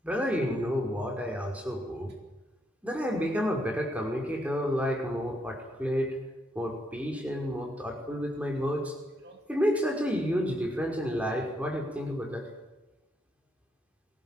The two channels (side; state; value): both; normal; correlation 0.76